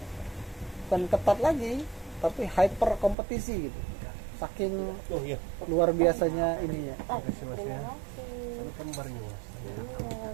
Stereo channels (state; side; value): drops out; left; at 3.2 s